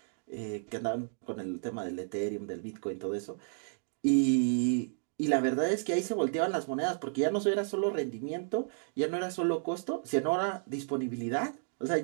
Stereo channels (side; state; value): left; silent; digital silence